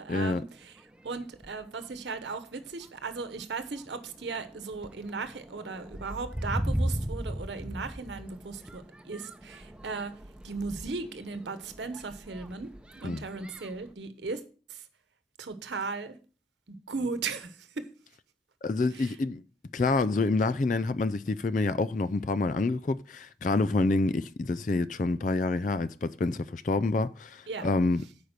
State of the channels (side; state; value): both; normal; correlation 0.63